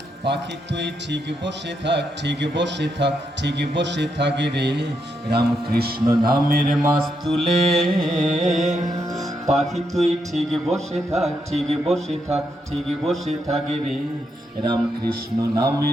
পাখি তুই ঠিক বসে থাক, ঠিক বসে থাক, ঠিক বসে থাক রে, রামকৃষ্ণ নামের মাস তুলে। পাখি তুই ঠিক বসে থাক, ঠিক বসে থাক, ঠিক বসে থাক রে, রামকৃষ্ণ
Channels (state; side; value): normal; both; correlation 0.80